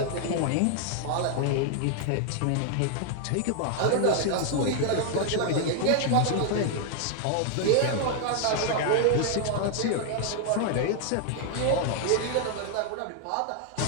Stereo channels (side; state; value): both; different; correlation 0.00